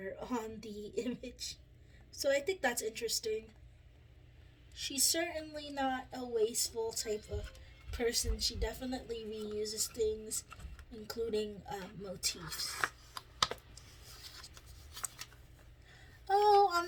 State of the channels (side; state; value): both; identical; correlation 1.00